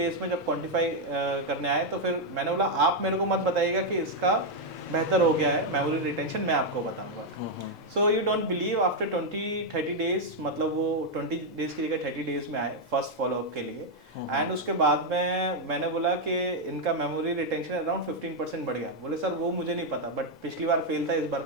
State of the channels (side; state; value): both; normal; correlation 0.00